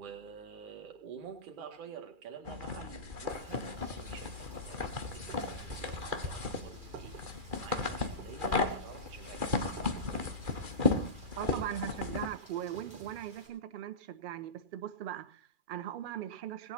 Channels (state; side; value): late; left; 2.4 ms